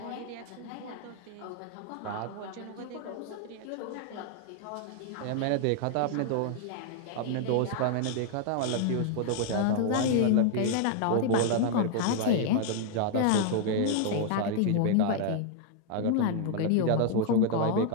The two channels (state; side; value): different; both; correlation 0.00